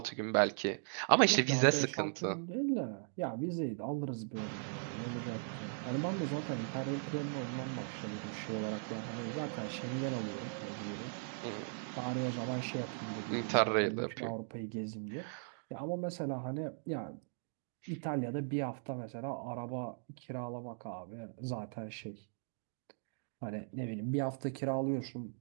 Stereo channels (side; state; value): left; silent; digital silence